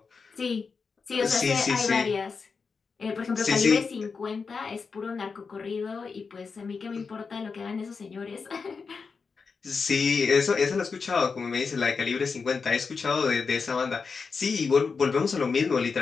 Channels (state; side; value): quieter; right; 5.1 dB